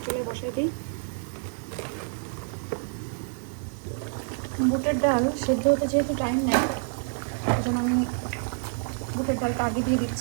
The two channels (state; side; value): silent; left; 58 dB below the other